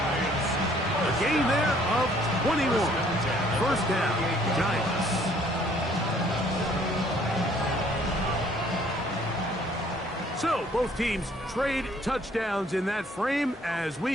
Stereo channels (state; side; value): normal; both; correlation 0.60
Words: A gain there of 21. First down, Giants. So, both teams trade touchdowns in that frame as